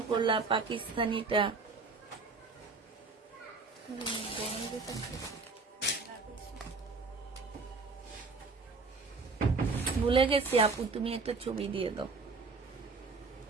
করলাম পাকিস্তানিটা। ভুলে গেছি আপু, তুমি একটা ছবি দিয়ে দাও।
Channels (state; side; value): quieter; left; 4.2 dB